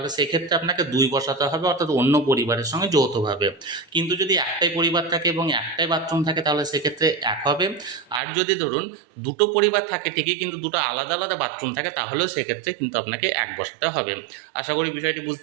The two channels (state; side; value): drops out; left; at 8.2 s